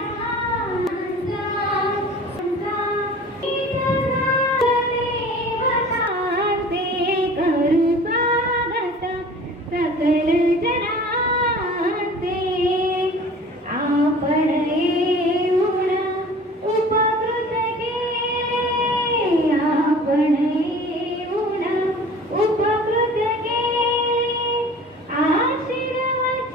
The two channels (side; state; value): both; normal; correlation 0.44